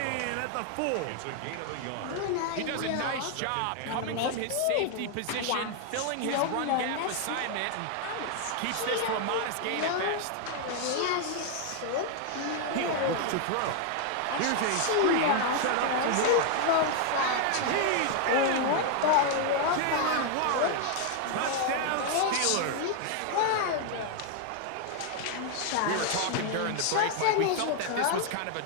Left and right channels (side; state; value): both; different; correlation 0.00